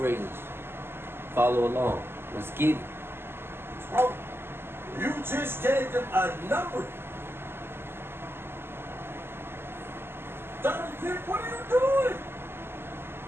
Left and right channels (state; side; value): late; left; 0.11 ms